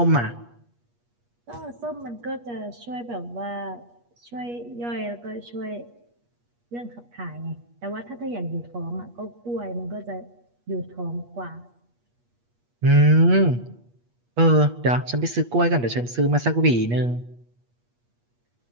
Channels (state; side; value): late; left; 8.4 ms